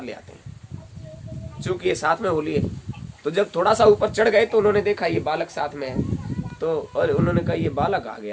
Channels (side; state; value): both; identical; correlation 1.00